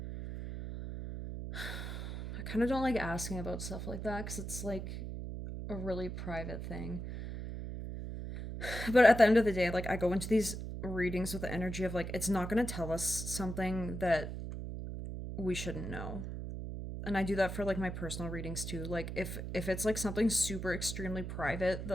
I kind of don't like asking about stuff like that because it's like a really private thing. But at the end of the day, like I go into these readings with the energy of like it's not going to tell us something that we shouldn't know. And I do that for like my personal readings too. Like if it's like something super extremely private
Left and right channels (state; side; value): noise; right; hum, 6 dB below the sound